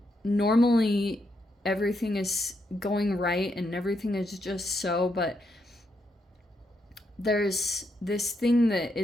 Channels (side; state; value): both; normal; correlation 0.80